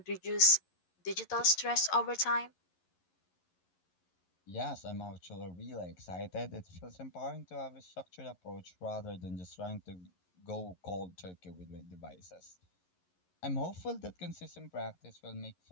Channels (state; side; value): late; right; 11 ms